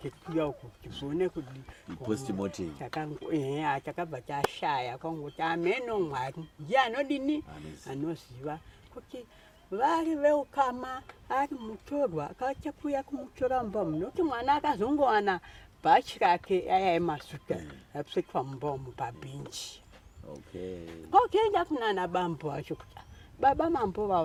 uko kuti zvione kudi chakabva chashaya kwangoti ameno Mwari ndiye anodini anoziva kuti vari veukama ari mutorwa akachakuya kumutora mumba munoti mwana akazongowana bhachi rake ayaemasuka apfekwa mumba umu pabhenji kwakuenda kunana bambo acho kuti baba mambo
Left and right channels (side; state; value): both; identical; correlation 1.00